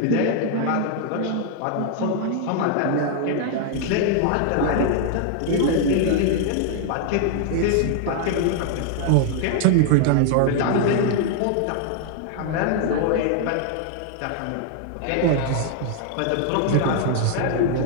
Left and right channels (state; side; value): different; both; correlation 0.00